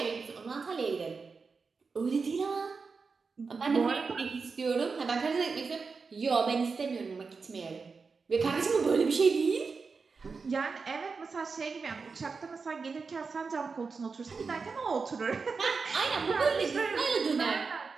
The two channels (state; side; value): quieter; left; 4.8 dB